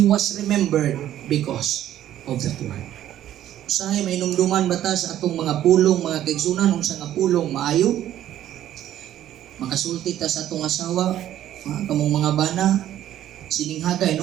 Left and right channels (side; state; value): left; quieter; 12.1 dB